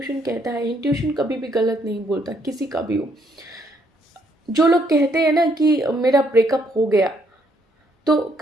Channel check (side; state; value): both; normal; correlation 0.71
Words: कहता है, इंट्यूशन कभी भी गलत नहीं बोलता, किसी का भी हो। जो लोग कहते हैं ना कि मेरा ब्रेकअप हो गया, तो